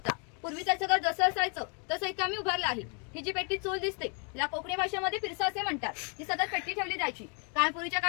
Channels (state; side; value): quieter; right; 37.8 dB